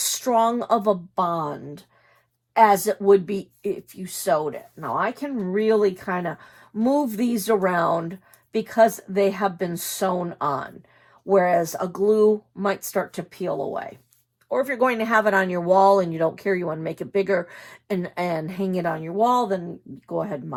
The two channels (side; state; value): both; identical; correlation 1.00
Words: of a bond as it would be if you sewed it. Now I can really kind of move these around because they have been sewn on, whereas a glue might start to peel away. Or if you're going to have it on your wall and you don't care, you want to make it bigger and hang it on your wall, then go ahead and